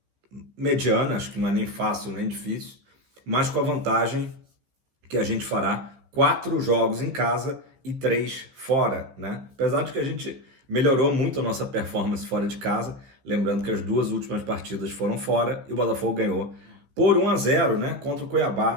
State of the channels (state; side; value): late; left; 15 ms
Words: mediana, acho que não é nem fácil nem difícil, mas com a vantagem que a gente fará 4 jogos em casa e 3 fora, né? Apesar de que a gente melhorou muito a nossa performance fora de casa, lembrando que as 2 últimas partidas foram fora e o Botafogo ganhou por 1-0, né? Contra o